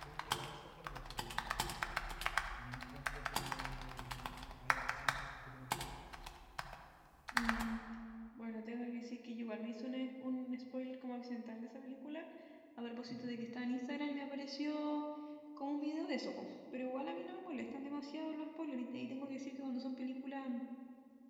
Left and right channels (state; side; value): identical; both; correlation 1.00